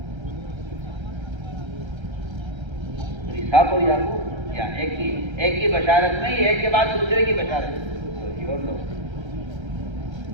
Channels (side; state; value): left; late; 1.3 ms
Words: صاف ہو یا کیا ایک کی بشارت نہیں، ایک کے بعد دوسرے کی بشارت، اور لوگ